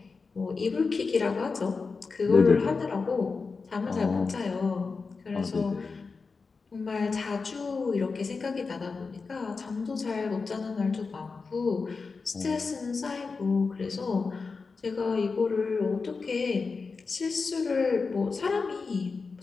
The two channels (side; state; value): right; quieter; 4.5 dB